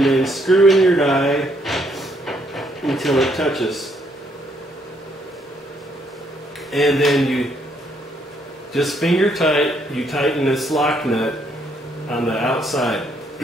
then screw in your die until it touches. And then you just finger tight, you tighten this lock nut on the outside.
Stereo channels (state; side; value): normal; both; correlation 0.71